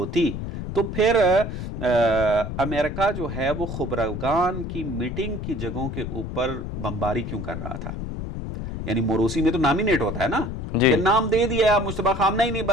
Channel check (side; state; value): left; noise; rumble, 6 dB below the sound